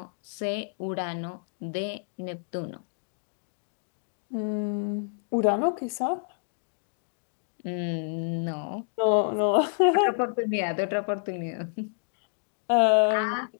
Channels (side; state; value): right; silent; digital silence